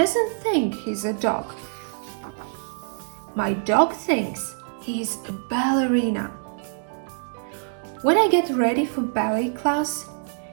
think he's a dog. My dog thinks he's a ballerina. When I get ready for ballet class,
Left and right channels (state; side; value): silent; left; digital silence